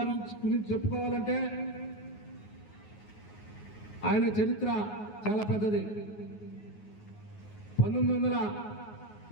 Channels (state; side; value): late; right; 9.5 ms